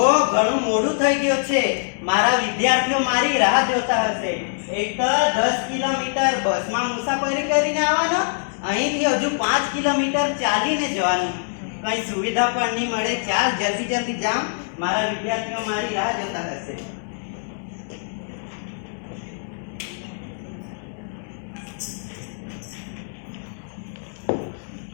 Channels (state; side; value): silent; right; digital silence